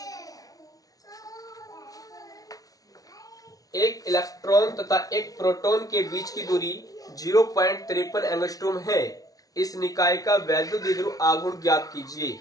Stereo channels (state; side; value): late; right; 0.18 ms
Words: एक इलेक्ट्रॉन तथा एक प्रोटॉन के बीच की दूरी 0.53 एंगस्ट्रॉम है। इस निकाय का वैद्युत द्विध्रुव आघूर्ण ज्ञात कीजिए।